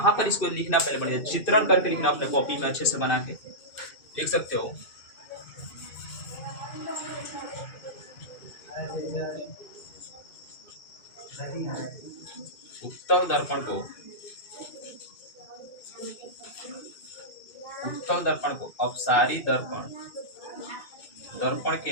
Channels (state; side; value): late; right; 2.6 ms